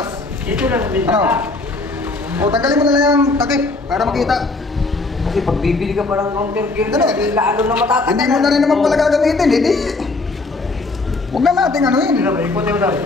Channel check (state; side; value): quieter; right; 3.4 dB